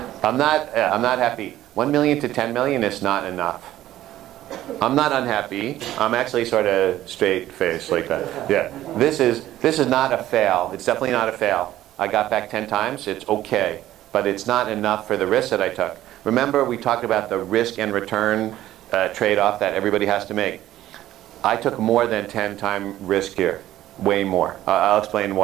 I'm not happy. 1 million to 10 million is not enough. I'm not unhappy. I'm actually sort of straight face like that. Yeah. This is not a fail. It's definitely not a fail. I got back 10 times. It's okay, but it's not enough for the risk that I took. Remember, we talked about the risk and return trade-off that everybody has to make. I took more than 10-time risk here. Way more. I'll explain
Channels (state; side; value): quieter; left; 13.8 dB